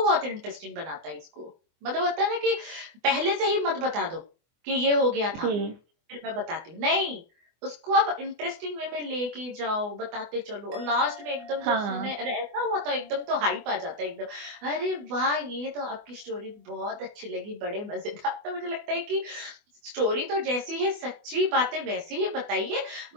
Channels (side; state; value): left; late; 24 ms